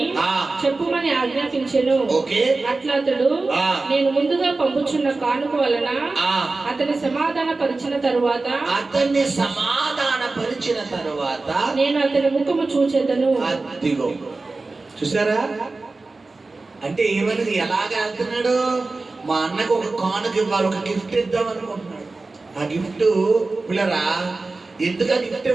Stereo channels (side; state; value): left; quieter; 3.5 dB